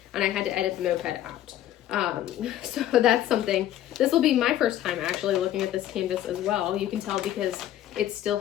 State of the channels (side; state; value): right; quieter; 12.6 dB